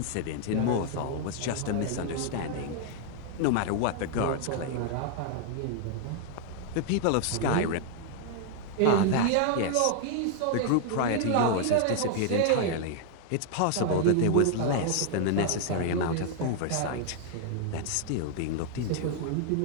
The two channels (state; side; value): different; both; correlation 0.00